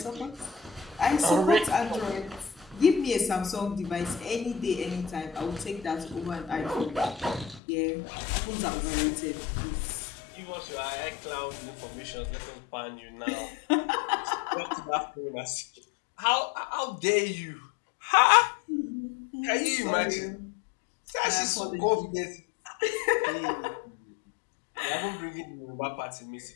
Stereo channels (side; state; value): right; drops out; at 7.6 s